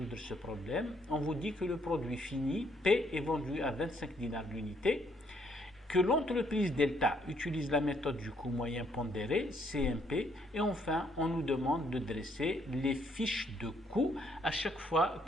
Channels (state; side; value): normal; both; correlation 0.69